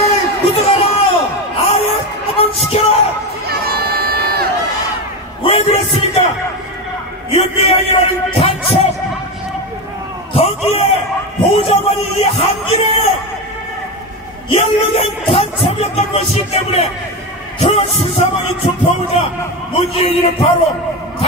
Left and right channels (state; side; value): normal; both; correlation 0.17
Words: 구속하라! 아예 시켜라! 왜 그랬습니까? 윤미향이라는 간첩 거기에 보좌관이 이 한길에 연루된 간첩이었던 것이기 때문에 그 수사망이 좁혀오자 문재인이는 바로